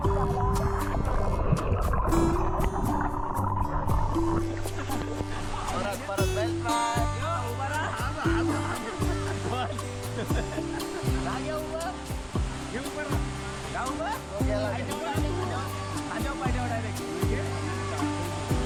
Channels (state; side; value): identical; both; correlation 1.00